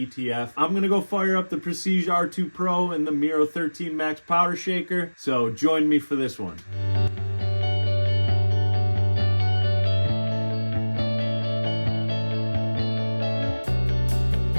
I'm going to go fire up the Prestige R2 Pro and the Miro 13 Max Powder Shaker. So join me for this one.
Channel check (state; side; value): inverted; both; correlation -1.00